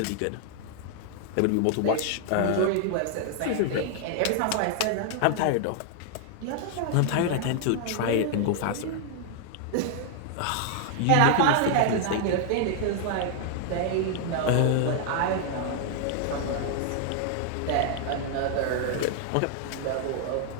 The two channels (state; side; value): different; both; correlation 0.00